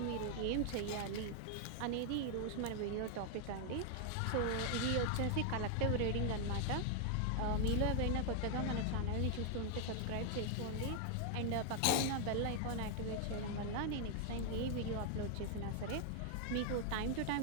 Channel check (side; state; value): both; different; correlation 0.00